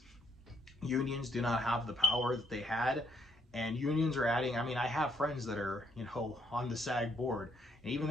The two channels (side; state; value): both; normal; correlation 0.68